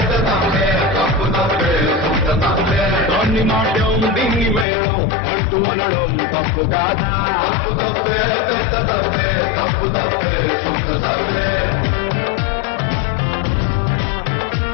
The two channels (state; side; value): drops out; right; at 4.7 s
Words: తప్పే తప్పు తప్పే సొంత తప్పే. దాన్ని నాట్యం దీన్ని మేళం అంటూ అనడం తప్పు కాదా? తప్పు తప్పే పెద్ద తప్పే తప్పు తప్పే సొంత తప్పే.